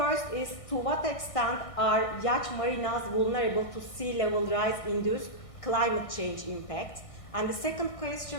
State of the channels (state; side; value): late; right; 1.6 ms